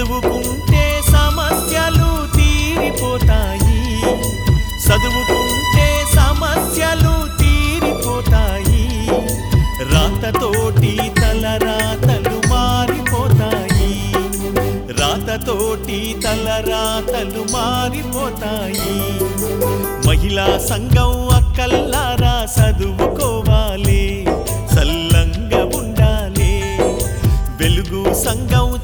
సమస్యలు తీరిపోతాయి, చదువుకుంటే సమస్యలు తీరిపోతాయి. రాతతోటి తలరాతలు మారిపోతాయి, రాతతోటి తలరాతలు మారిపోతాయి. మహిళా సంఘం అక్కల్లారా చదువుకోవాలి, సల్లంగా ఉండాలి. వెలుగు సంఘం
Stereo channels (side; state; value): both; identical; correlation 1.00